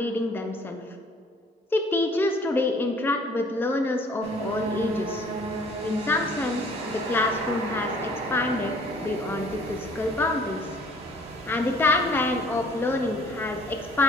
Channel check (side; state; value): both; normal; correlation 0.55